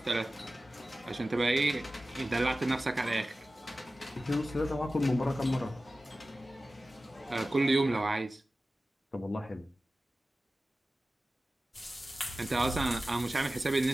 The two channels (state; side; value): normal; both; correlation 0.96